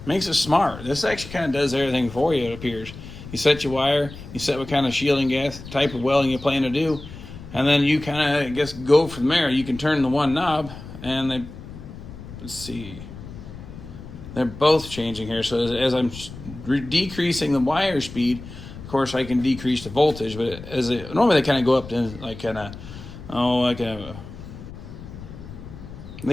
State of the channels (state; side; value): noise; left; rumble, 14 dB below the sound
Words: makes it smart. This actually kind of does everything for you, it appears. You set your wire, you set what kind of shielding gas, type of welding you plan to do, and then you kind of, I guess, go from there. You can turn the one knob, and they, let's see, they're both changing here. So as I'm decreasing the wire speed, of course, I can decrease the voltage, but normally they kind of go up to like